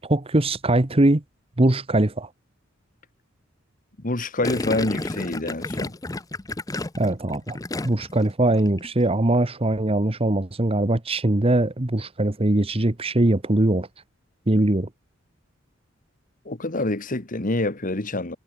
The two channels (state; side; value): normal; both; correlation 0.70